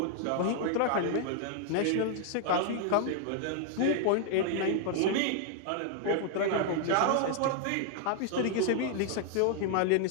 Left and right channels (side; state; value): both; different; correlation 0.00